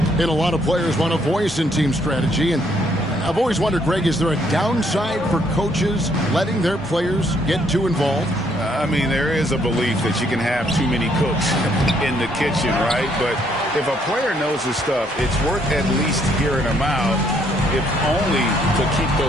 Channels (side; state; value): both; normal; correlation 0.69